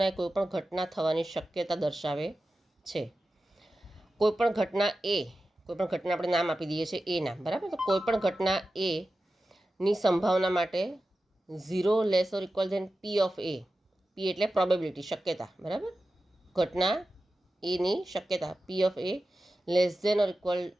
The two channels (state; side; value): normal; both; correlation 0.93